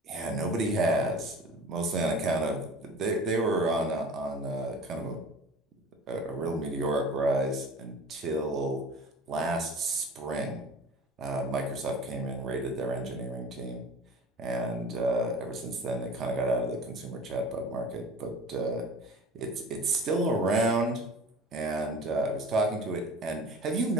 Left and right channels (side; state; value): both; normal; correlation 0.41